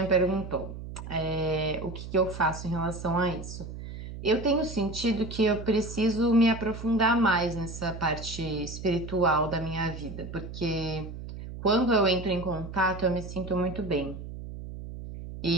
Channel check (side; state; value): right; noise; hum, 10 dB below the sound